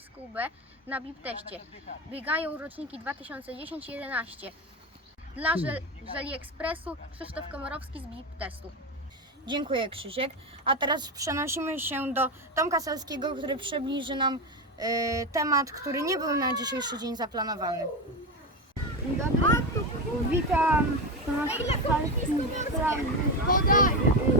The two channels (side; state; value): both; normal; correlation 0.16